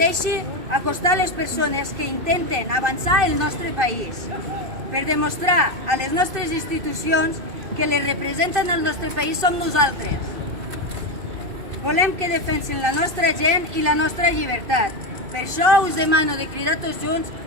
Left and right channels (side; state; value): left; late; 2.6 ms